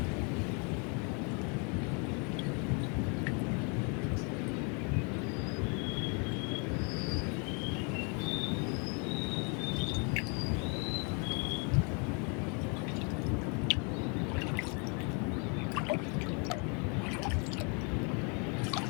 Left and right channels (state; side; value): quieter; right; 34.9 dB